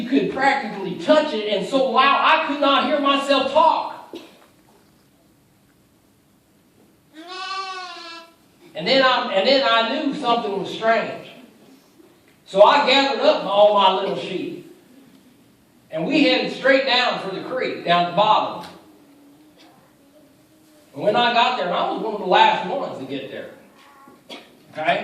could practically touch it, and so loud I could not hear myself talk. And then I knew something was strange. So I gathered up all my little sheep. And we headed straight down for the creek, down the bottom. And when I got there, and I was one of the last ones to get there.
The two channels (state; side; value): identical; both; correlation 1.00